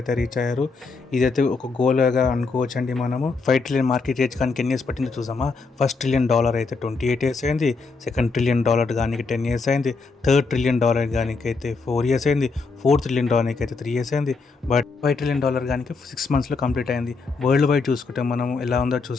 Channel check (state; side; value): quieter; right; 4.3 dB